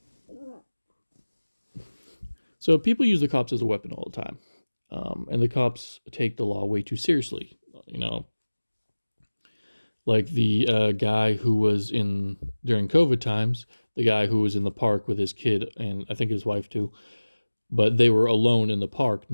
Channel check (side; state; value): both; inverted; correlation -1.00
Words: So people use the cops as a weapon all the time. And the cops take the law way too seriously. Like the guy who was during COVID times, the guy who was in the park with his kid and I think his wife too, but they were alone in the park